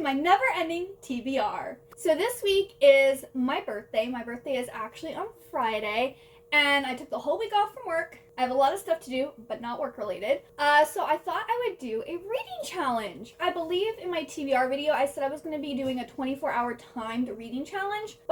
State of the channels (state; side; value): identical; both; correlation 1.00